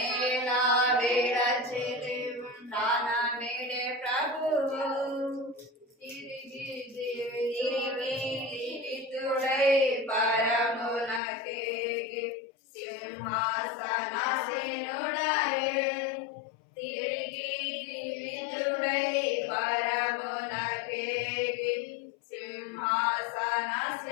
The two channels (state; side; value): drops out; right; at 11.2 s